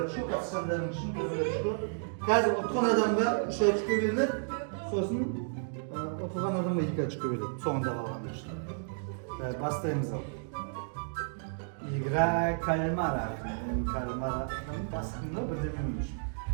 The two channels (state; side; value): silent; left; digital silence